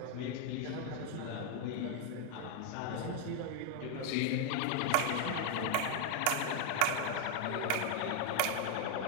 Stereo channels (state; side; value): different; both; correlation 0.01